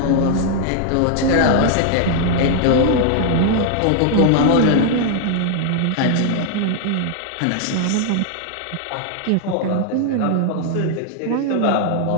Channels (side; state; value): both; different; correlation 0.00